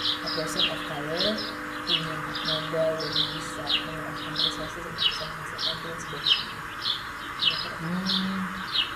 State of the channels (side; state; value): both; identical; correlation 1.00